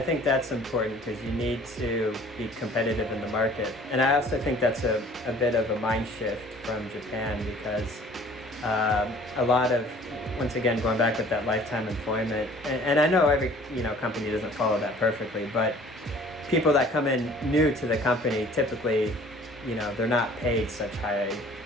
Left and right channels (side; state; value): both; normal; correlation 0.51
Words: important because you need to be competitive in the market. And I also think that's a bit of a mind shift from Japan because a lot of, once again, going back with that lifetime employment, and I know every company doesn't follow that perfectly, but people that come in new to the company typically, they're not paid such high